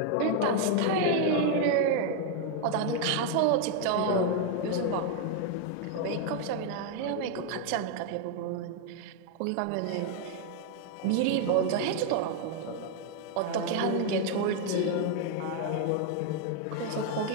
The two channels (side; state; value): both; different; correlation 0.01